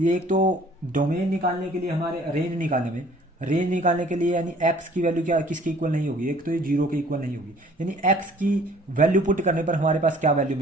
एक तो डोमेन निकालने के लिए, हमारे रेंज निकालने के लिए, यानी एक्स की वैल्यू क्या किसके इक्वल नहीं होगी, एक तो ये 0 के इक्वल नहीं होगी। यानी एक्स की वैल्यू पुट करने पर हमारे पास क्या वैल्यू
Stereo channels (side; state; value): both; normal; correlation 0.54